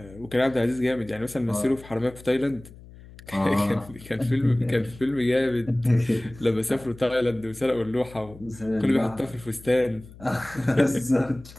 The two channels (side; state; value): left; noise; hum, 19 dB below the sound